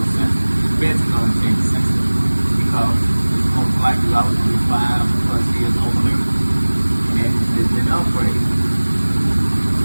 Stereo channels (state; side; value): inverted; both; correlation -1.00